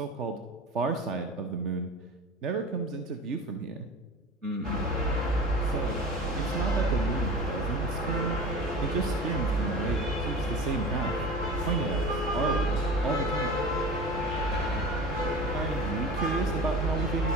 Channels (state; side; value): normal; both; correlation 0.34